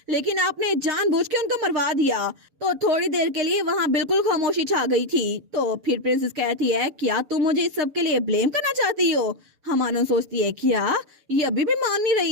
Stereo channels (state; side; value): late; left; 7.0 ms